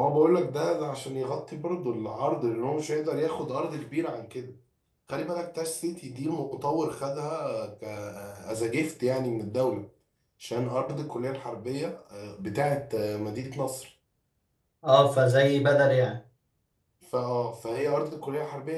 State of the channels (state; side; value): identical; both; correlation 1.00